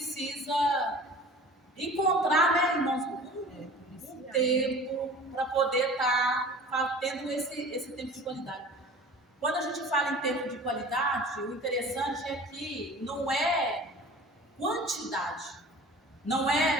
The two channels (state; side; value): normal; both; correlation 0.42